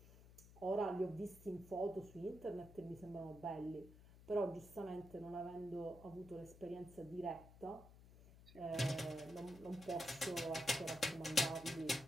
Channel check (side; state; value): left; noise; hum, 19 dB below the sound